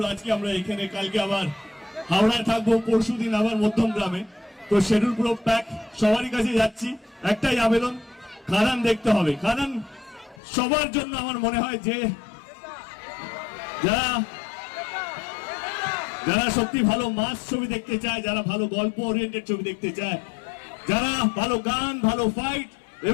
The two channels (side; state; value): right; drops out; at 10.4 s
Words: আজকে আমরা এখানে, কালকে আবার হাওড়ায় থাকবো, পরশুদিন আবার মধ্যমগ্রামে। তো শিডিউল পুরো প্যাক, সবারই কাছে যাচ্ছি, একটাই আবেদন, খাদান দেখতে হবে। খাদান সবার জন্য আমার মনে হয় যে যারা যারা সত্যি ভালো মাস ছবি দেখতে চায়, যারা ভালো গল্প ওরিয়েন্টেড ছবি দেখতে চায়, যারা ভালো গান, ভালো ফাইট